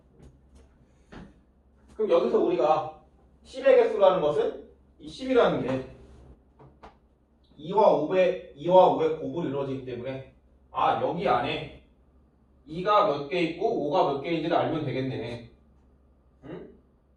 그럼 여기서 우리가 10의 개수라는 것은 이 10이라는 게 2와 5의 곱으로 이루어지기 때문에 여기 안에 2가 몇 개 있고 5가 몇 개인지를 알면 되겠네. 응?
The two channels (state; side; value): identical; both; correlation 1.00